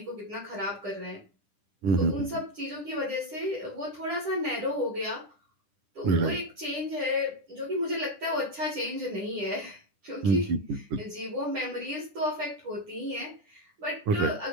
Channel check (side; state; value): left; late; 10 ms